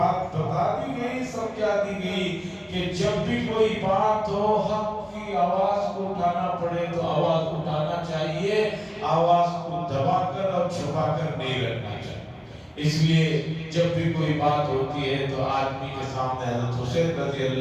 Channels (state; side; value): identical; both; correlation 1.00